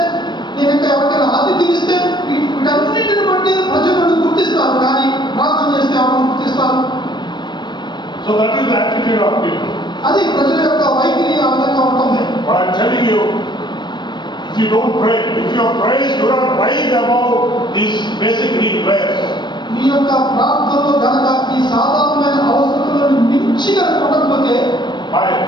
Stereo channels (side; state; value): right; late; 0.22 ms